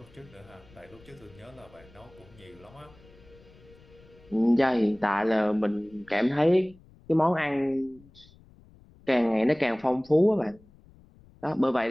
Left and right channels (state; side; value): noise; left; rumble, 26 dB below the sound